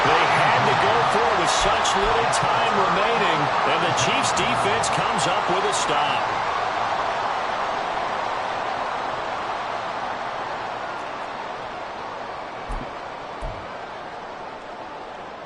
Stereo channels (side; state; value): both; identical; correlation 1.00